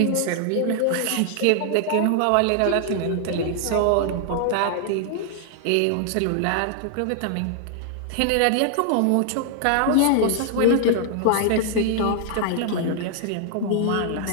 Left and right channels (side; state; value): both; different; correlation 0.00